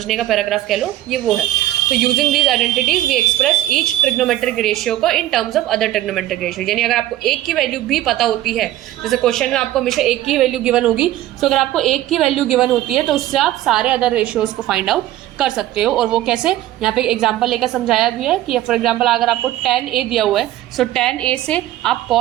का पैराग्राफ कह लो, ये वो है। तो using these identities we express each trigonometric ratio को in terms of other trigonometric ratio. यानी अगर आपको एक की वैल्यू भी पता होती है, जैसे क्वेश्चन में आपको हमेशा एक की वैल्यू गिवन होगी, तो अगर आपको एक की वैल्यू गिवन होती है तो उससे आप सारे अदर रेशियोज को फाइंड आउट कर सकते हो। और वो कैसे, यहाँ पे एग्जांपल लेकर समझाया भी है कि फॉर एग्जांपल अगर आपको tan a दिया हुआ है, सो tan a से आप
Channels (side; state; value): left; quieter; 14.3 dB